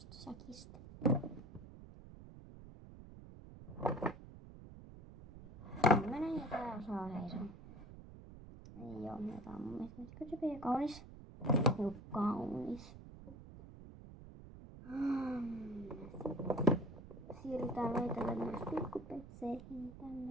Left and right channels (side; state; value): right; noise; rumble, 15 dB below the sound